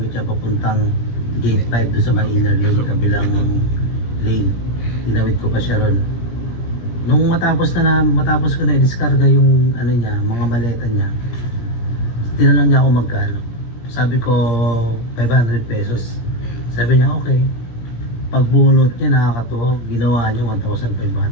niya papuntang gate 5 doon sa may inner lane, kabilang lane. Tinawid ko pa siya ron. Nung matapos ko na i-discarga yung niya, mga maleta niya, tinanong niya ako magkano. Sabi ko 500 pesos. Sabi niya okay. Pagbunot niya nakakatuwa, ginawa niya 1,500.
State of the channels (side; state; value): right; late; 17 ms